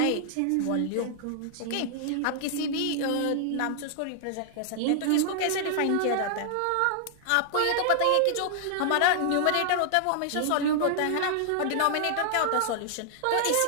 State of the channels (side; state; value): both; different; correlation -0.01